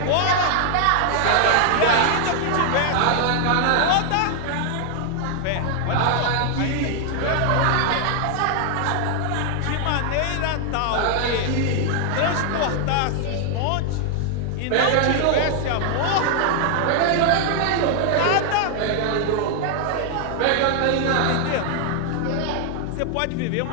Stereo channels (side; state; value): both; different; correlation 0.00